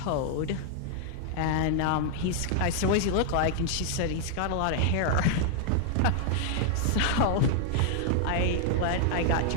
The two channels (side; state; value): both; different; correlation 0.00